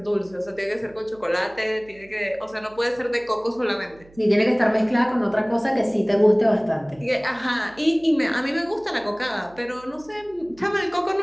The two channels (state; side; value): noise; right; hum, 26 dB below the sound